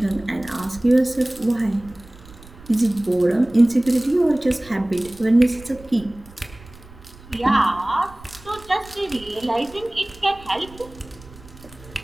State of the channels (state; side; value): noise; right; rumble, 21 dB below the sound